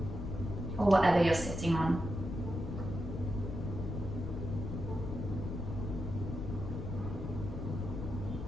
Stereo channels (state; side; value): noise; left; rumble, 5 dB below the sound